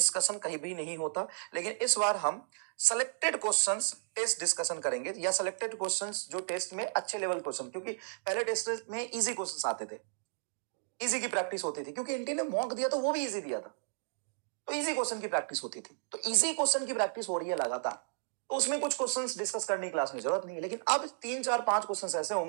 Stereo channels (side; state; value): left; silent; digital silence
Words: कहीं भी नहीं होता, लेकिन इस बार हम सेलेक्टेड क्वेश्चंस टेस्ट डिस्कशन करेंगे, या सेलेक्टेड क्वेश्चंस जो टेस्ट में अच्छे लेवल क्वेश्चन, क्योंकि पहले टेस्ट में इजी क्वेश्चंस आते थे, इजी की प्रैक्टिस होती थी, क्योंकि एनटी ने मॉक दिया तो वो भी इजी दिया था, तो इजी क्वेश्चन की प्रैक्टिस होती थी। तो इजी क्वेश्चन की प्रैक्टिस हो रही है लगातार, तो उसमें कुछ क्वेश्चंस डिस्कस करने की क्लास में जरूरत नहीं है, लेकिन अब 3 4 5 क्वेश्चंस ऐसे